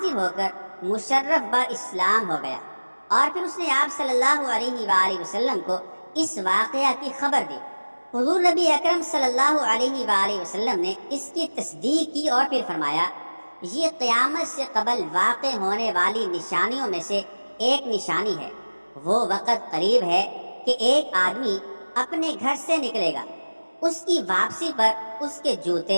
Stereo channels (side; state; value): both; inverted; correlation -1.00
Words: ہو کر مشرف با اسلام ہو گیا اور پھر اس نے آپ صلی اللہ علیہ وآلہ وسلم کو اس واقعہ کی خبر دی۔ حضور نبی اکرم صلی اللہ علیہ وآلہ وسلم نے اس کی تصدیق کی اور پھر فرمایا، یہ قیامت سے قبل واقع ہونے والی نشانیوں میں سے ایک نشانی ہے۔ وہ وقت قریب ہے کہ ایک آدمی اپنے گھر سے نکلے گا، اس کی واپسی پر اس کے